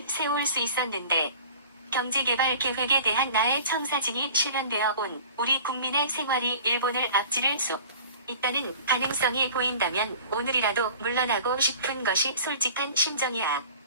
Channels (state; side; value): inverted; both; correlation -0.44